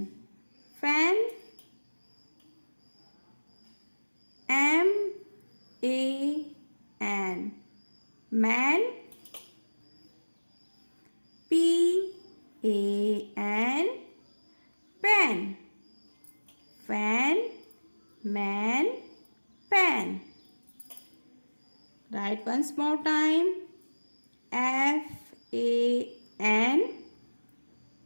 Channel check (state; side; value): inverted; both; correlation -1.00